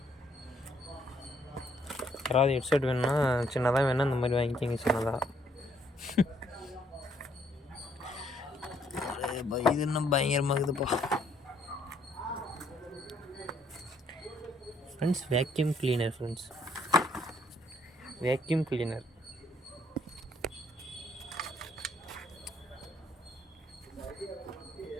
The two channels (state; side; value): normal; both; correlation 0.68